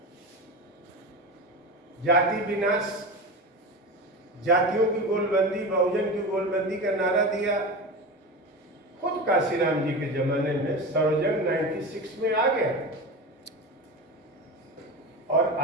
जाति विनाश, जातियों की गोलबंदी, बहुजन की गोलबंदी का नारा दिया। खुद कांशीराम जी के जमाने में सर्वजन 96 में आ गया। और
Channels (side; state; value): both; normal; correlation 0.25